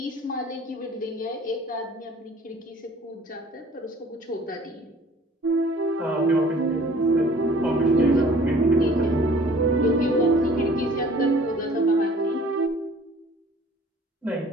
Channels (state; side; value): normal; both; correlation 0.51